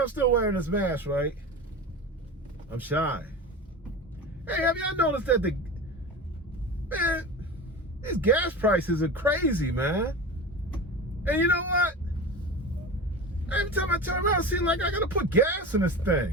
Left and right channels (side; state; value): both; normal; correlation 0.29